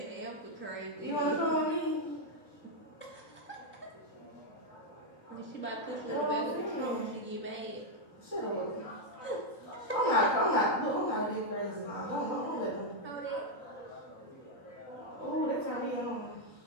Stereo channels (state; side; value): late; right; 3.9 ms